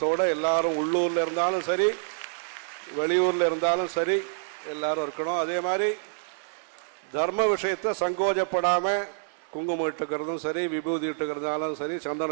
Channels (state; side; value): silent; left; digital silence